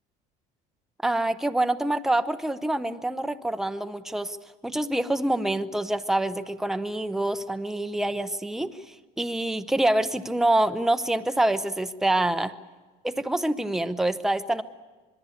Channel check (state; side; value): normal; both; correlation 0.93